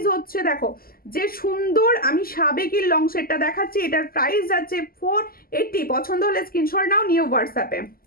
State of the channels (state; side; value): late; right; 0.42 ms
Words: হচ্ছে, দেখো যে সুন্দর আমি সাবেকির লং সেটটা দেখাচ্ছি, এটার প্রাইস যাচ্ছে 480। পছন্দ হলে স্ক্রিনশট নাও, নিয়ে হোয়াটসঅ্যাপে।